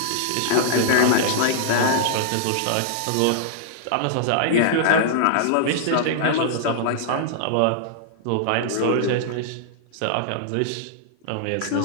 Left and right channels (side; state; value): both; different; correlation -0.01